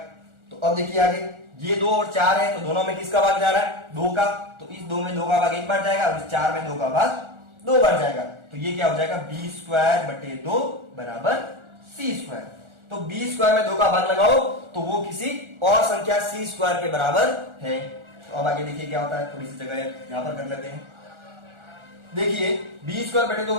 तो अब देखिए आगे ये 2 और 4 है तो दोनों में किसका भाग जा रहा है 2 का, तो इस 2 में 2 का भाग 1 बार जाएगा और इस 4 में 2 का भाग 2 बार जाएगा। तो ये क्या हो जाएगा b स्क्वायर बटे 2 बराबर c स्क्वायर। तो b स्क्वायर में 2 का भाग लगाओ तो वो किसी और संख्या c स्क्वायर के बराबर है। तो अब आगे देखिए क्या होता है, थोड़ी सी जगह यहां पर कर लेते हैं। देखिए b स्क्वायर बटे 2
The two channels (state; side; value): late; left; 1.4 ms